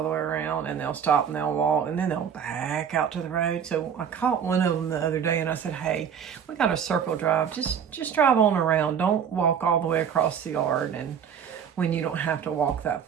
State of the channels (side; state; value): left; quieter; 7.8 dB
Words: the way around, and they'll stop and they'll walk and then they'll back out to the road. So I caught one of them the other day and I said, hey, we got a circle drive. Just drive on around. Don't walk all the way across the yard, and when you don't have to walk that